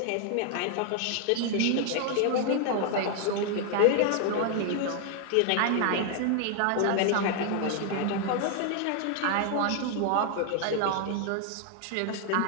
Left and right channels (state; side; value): different; both; correlation 0.00